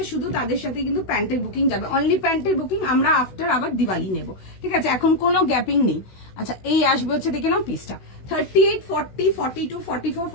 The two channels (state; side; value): late; right; 16 ms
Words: শুধু তাদের সাথে কিন্তু প্যান্টের বুকিং যাবে, অনলি প্যান্টের বুকিং আমরা আফটার আবার দিওয়ালি নেব, ঠিক আছে, এখন কোনো গ্যাপিং নেই। আচ্ছা এই আসবে হচ্ছে দেখে নাও পিসটা 38, 40, 42, 44,